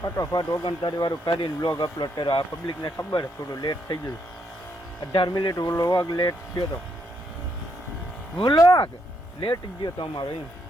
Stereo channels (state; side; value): normal; both; correlation 0.76